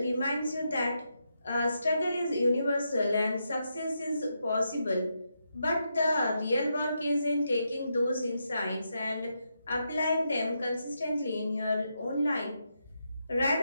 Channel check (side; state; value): both; inverted; correlation -0.83